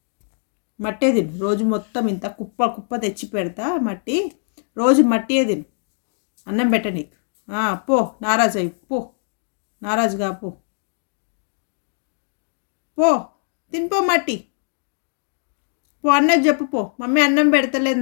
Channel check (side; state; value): right; silent; digital silence